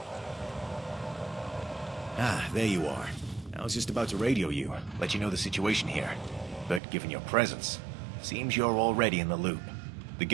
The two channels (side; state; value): left; drops out; at 6.8 s